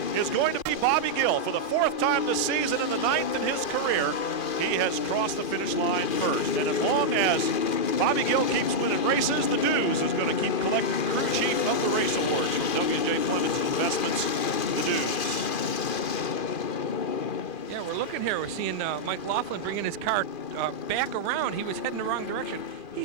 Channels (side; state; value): right; late; 2.4 ms